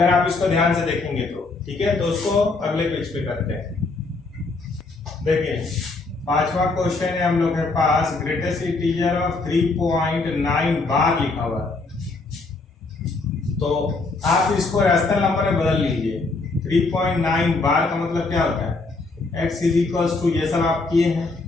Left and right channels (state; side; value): quieter; right; 3.6 dB